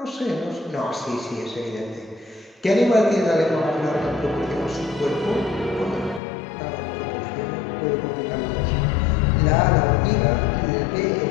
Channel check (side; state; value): right; drops out; at 6.2 s